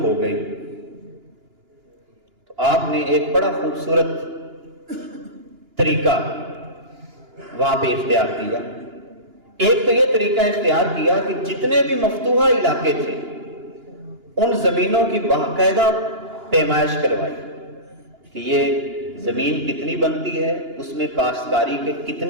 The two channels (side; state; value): left; late; 2.9 ms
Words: گئی، تو آپ نے ایک بڑا خوبصورت طریقہ وہاں پہ اختیار کیا۔ ایک تو یہ طریقہ اختیار کیا کہ جتنے بھی مفتوحہ علاقے تھے ان زمینوں کی باقاعدہ پیمائش کروائی کہ یہ زمین کتنی بنتی ہے، اس میں کاشتکاری کے